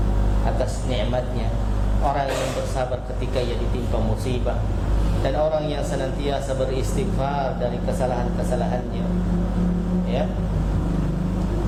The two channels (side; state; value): both; identical; correlation 1.00